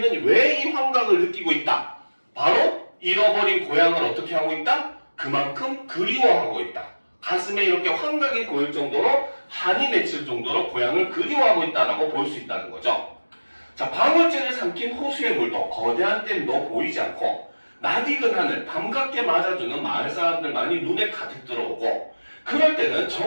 왜 이 환각을 느끼고 있다? 바로 잃어버린 고향을 어떻게 하고 있다? 그만큼 그리워하고 있다. 가슴에 이렇게 환각이 보일 정도로 한이 맺힐 정도로 고향을 그리워하고 있다라고 볼 수 있다는 거죠. 자, 방울제를 삼킨 호수의 물도 거대한 댐도 보이지 않고 낯익은 하늘, 밤갑게 맞아주는 마을 사람들만이 눈에 가득 들어오고 그럴 때는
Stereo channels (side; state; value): both; inverted; correlation -1.00